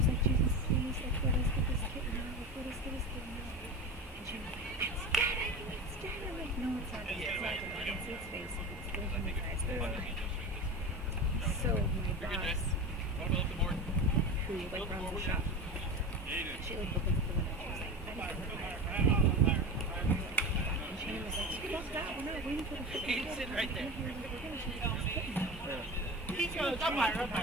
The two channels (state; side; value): normal; both; correlation 0.28